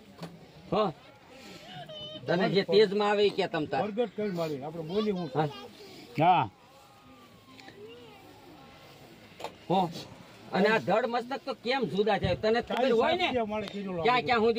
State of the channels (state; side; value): identical; both; correlation 1.00